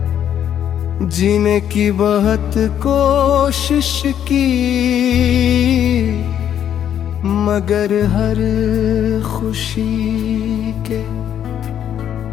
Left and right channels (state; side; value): quieter; right; 9.8 dB